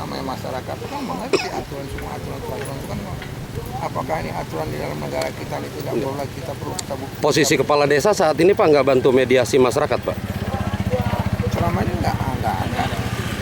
masyarakat kan mengerti aturan semua aturan itu kan. Apakah ini aturan di dalam negara kita ini tidak boleh kita perlu kita buktikan. Posisi kepala desa saat ini Pak nggak bantu mediasi masyarakat Pak? Selama ini enggak ada.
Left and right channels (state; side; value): identical; both; correlation 1.00